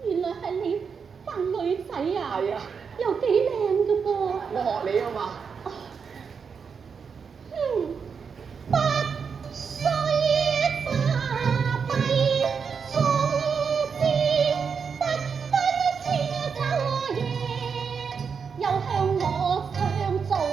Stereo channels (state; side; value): quieter; left; 6.1 dB